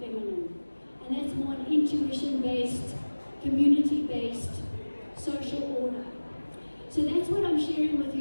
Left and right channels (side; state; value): both; inverted; correlation -1.00